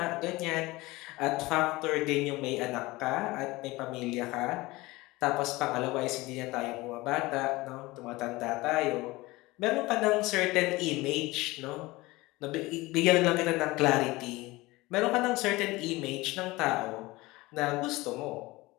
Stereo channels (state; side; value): quieter; right; 20.9 dB